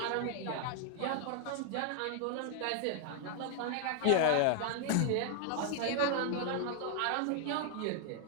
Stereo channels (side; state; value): both; different; correlation 0.00